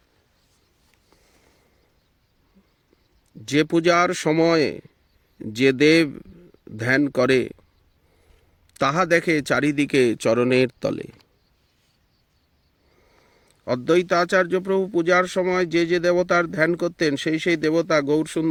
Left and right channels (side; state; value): both; identical; correlation 1.00